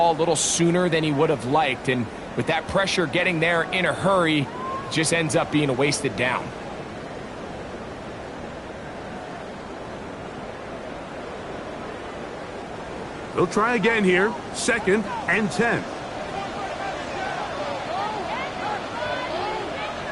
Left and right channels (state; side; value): identical; both; correlation 1.00